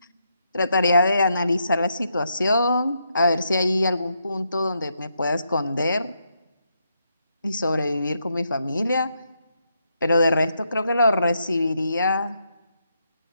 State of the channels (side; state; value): both; inverted; correlation -0.80